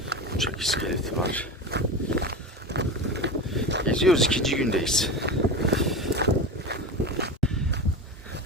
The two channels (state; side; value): normal; both; correlation 0.25